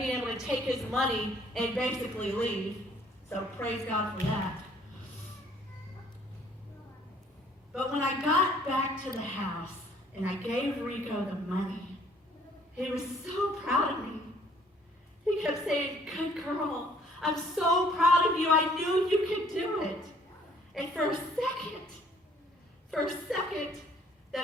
able to take his money and basically leave. So praise God for that. But when I got back to the house and I gave Rico the money, he was so proud of me. He kept saying, "Good girl, I'm so proud of you. I knew you could do it." And for a second,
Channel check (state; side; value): normal; both; correlation 0.60